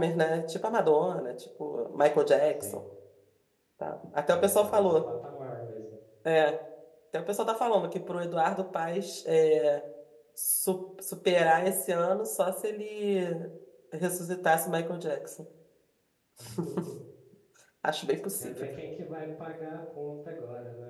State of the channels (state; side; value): identical; both; correlation 1.00